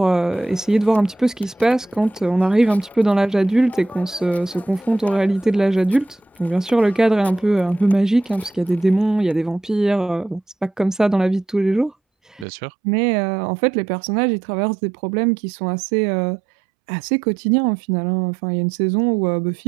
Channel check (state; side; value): drops out; left; at 12.5 s